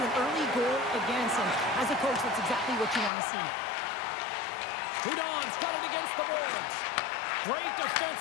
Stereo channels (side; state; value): right; drops out; at 3.1 s